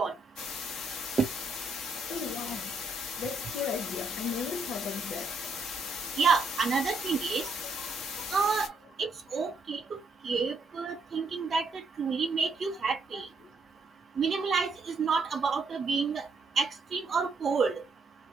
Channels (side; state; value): left; quieter; 3.1 dB